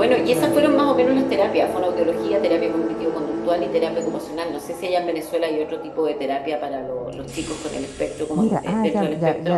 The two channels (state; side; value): identical; both; correlation 1.00